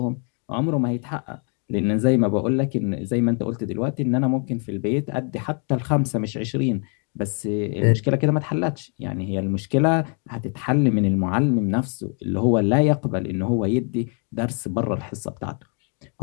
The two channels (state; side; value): quieter; right; 39.4 dB